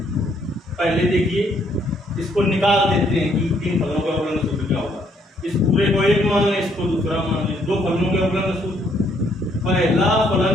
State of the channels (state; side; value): normal; both; correlation 0.69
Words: पहले देखिए इसको निकाल देते हैं कि तीन फलनों के अवकलन का सूत्र क्या होगा। इस पूरे को एक मान लें, इसको दूसरा मान लें। दो फलनों के अवकलन का सूत्र, पहला फलन